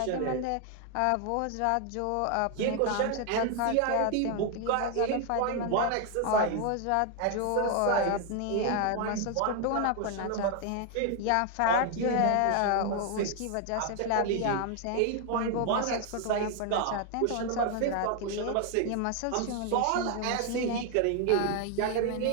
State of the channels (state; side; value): different; both; correlation 0.00